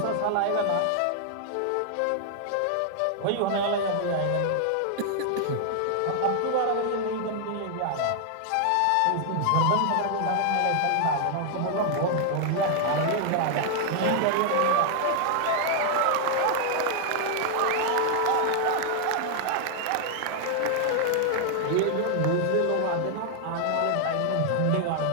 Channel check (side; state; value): both; different; correlation 0.00